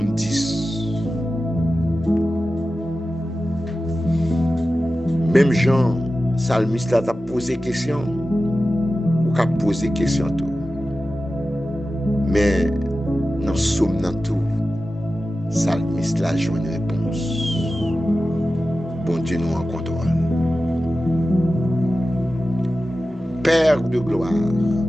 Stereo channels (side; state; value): both; normal; correlation 0.94